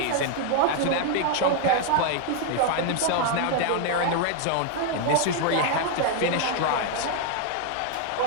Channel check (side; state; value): both; different; correlation 0.00